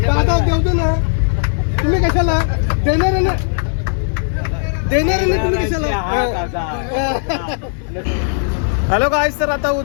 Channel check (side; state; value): right; silent; 68 dB below the other